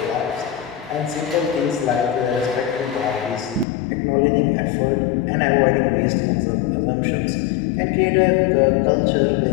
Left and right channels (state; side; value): drops out; right; at 3.7 s